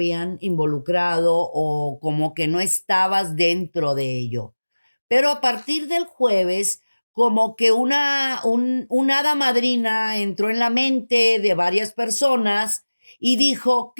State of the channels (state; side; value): inverted; both; correlation -1.00